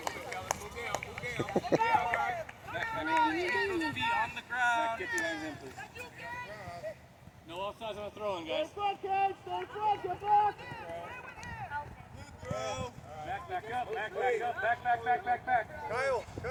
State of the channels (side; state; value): both; identical; correlation 1.00